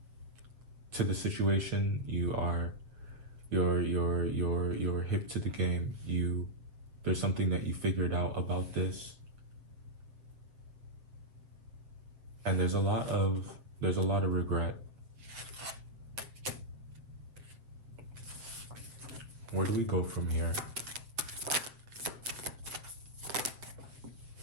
to the situation. You're hip to the game. There's something that you figured out about this. And there's a lot of regret. Where do we go from here?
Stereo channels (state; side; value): late; left; 7.4 ms